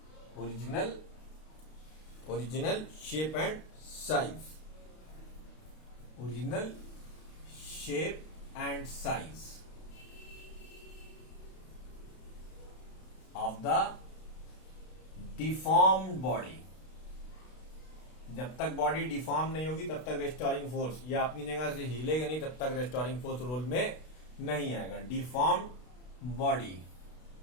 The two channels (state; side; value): late; right; 32 ms